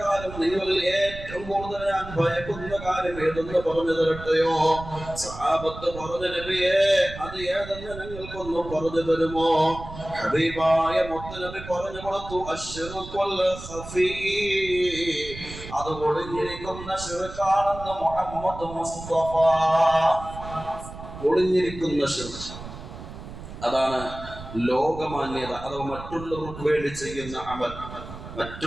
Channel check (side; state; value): right; noise; rumble, 12 dB below the sound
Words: നിങ്ങൾ ഏറ്റവും കൂടുതൽ ഞാൻ ഭയക്കുന്ന കാര്യം ഏതെന്ന് പറഞ്ഞു തരട്ടെയോ? സഹാബത്ത് പറഞ്ഞു, നബിയേ, അത് ഏതെന്ന് ഞങ്ങൾക്കൊന്ന് പറഞ്ഞു തരുമോ? ഹബീബായ മുത്തനബി പറഞ്ഞു കൊടുത്തു, അശ്ശിർകുൽ ഖഫീ, അത് ഒളിഞ്ഞിരിക്കുന്ന ശിർക്കാണെന്ന് മുഹമ്മദ് മുസ്തഫ. ഒളിഞ്ഞിരിക്കുന്ന ശിർക്ക്, അതാണ് ലോകമാന്യത, അഥവാ മറ്റുള്ളവർക്ക് വേണ്ടി ചെയ്യുന്ന അമൽ.